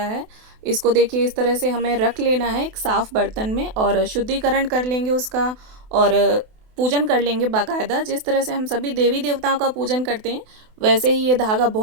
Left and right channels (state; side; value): late; left; 28 ms